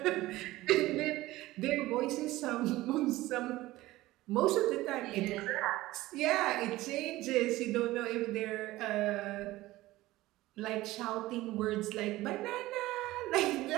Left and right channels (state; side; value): quieter; left; 17.6 dB